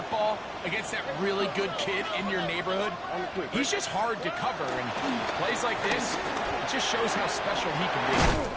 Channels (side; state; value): both; identical; correlation 1.00